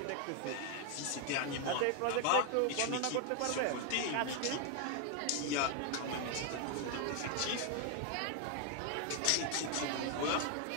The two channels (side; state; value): both; different; correlation 0.01